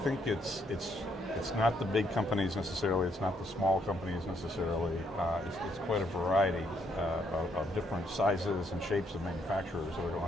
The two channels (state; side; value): normal; both; correlation 0.72